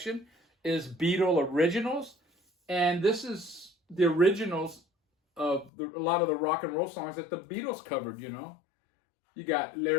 is Beatle Originals. And this is the originals of a lot of the rock and roll songs that the Beatles covered, you know. You got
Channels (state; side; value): drops out; right; at 5.7 s